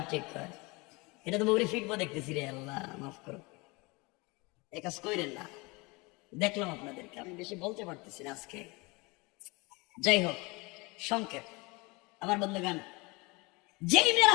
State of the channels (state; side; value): quieter; right; 25.9 dB